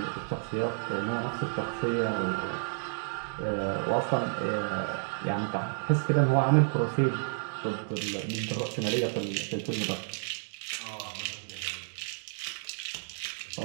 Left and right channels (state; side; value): silent; left; digital silence